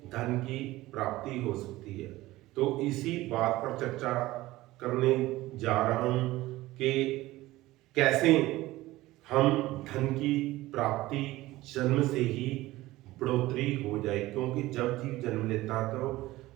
धन की प्राप्ति हो सकती है। तो इसी बात पर चर्चा करने जा रहा हूं कि कैसे हम धन की प्राप्ति जन्म से ही बढ़ोतरी हो जाए, क्योंकि जब जीव जन्म लेता है तो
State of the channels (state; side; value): quieter; left; 17.7 dB